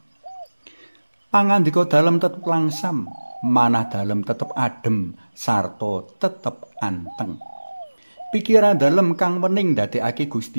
Pangandika dalem tetep langsam, manah dalem tetep adem sarta tetep anteng. Pikiran dalem kang wening ndadekake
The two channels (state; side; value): inverted; both; correlation -1.00